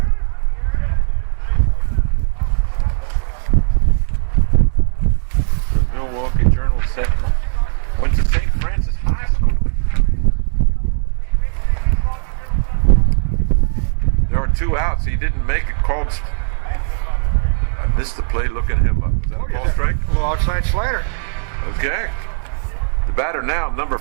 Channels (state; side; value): silent; left; 68 dB below the other